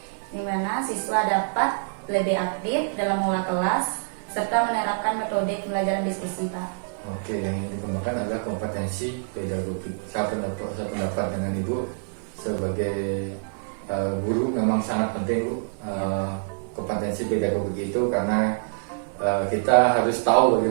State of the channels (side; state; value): left; silent; 61 dB below the other